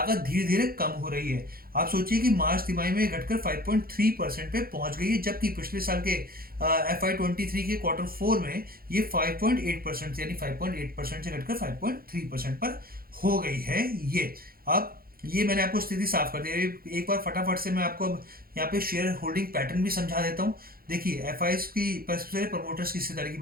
धीरे धीरे कम हो रही है। आप सोचिए कि मार्च तिमाही में घटकर 5.3% पे पहुंच गई है, जबकि पिछले साल के FY23 के क्वार्टर 4 में ये 5.8%, यानी 5.8% से घटकर 5.3% पर हो गई है ये। अब ये मैंने आपको स्थिति साफ कर दी है। एक बार फटाफट से मैं आपको अब यहाँ पे शेयर होल्डिंग पैटर्न भी समझा देता हूँ। देखिए एफआईएस की सबसे पहले प्रमोटर्स की हिस्सेदारी की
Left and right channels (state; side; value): late; left; 0.43 ms